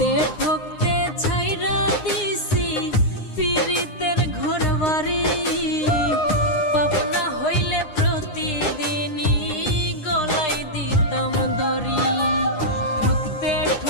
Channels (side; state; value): right; late; 9.8 ms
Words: ঠকতে ছাইরা দিছি পীড়িতের ঘরবাড়ি। পাপনা হইলে প্রতিদিনই গলায় দিতাম দড়ি, ঠকতে